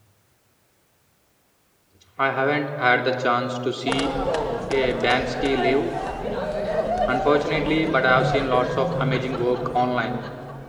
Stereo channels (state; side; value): identical; both; correlation 1.00